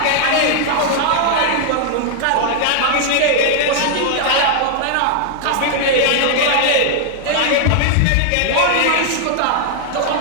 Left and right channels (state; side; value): different; both; correlation 0.00